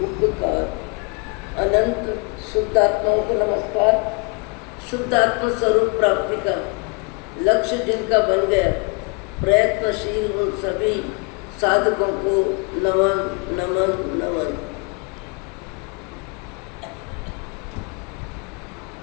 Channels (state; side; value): quieter; right; 32.3 dB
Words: उपकार। अनंत शुद्ध आत्माओं को नमस्कार। शुद्ध आत्मा स्वरूप प्राप्ति का लक्ष्य जिनका बन गया, प्रयत्नशील उन सभी साधकों को नमन नमन नमन।